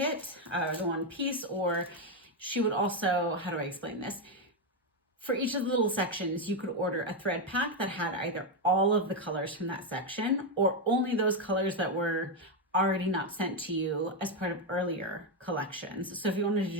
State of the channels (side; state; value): both; normal; correlation 0.05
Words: the one piece, or she would also, how do I explain this? For each of the little sections, you could order a thread pack that had either all of the colors from that section or only those colors that were already not sent to you as part of earlier collections. So if you wanted to